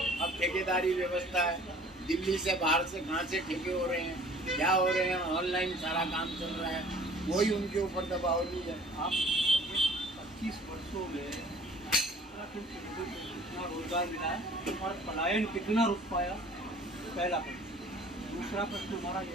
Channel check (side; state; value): both; normal; correlation 0.51